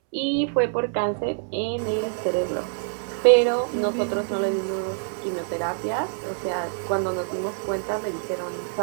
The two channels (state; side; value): silent; left; 61 dB below the other